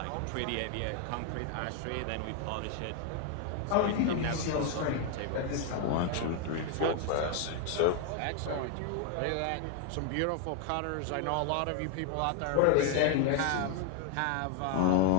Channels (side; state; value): both; different; correlation 0.01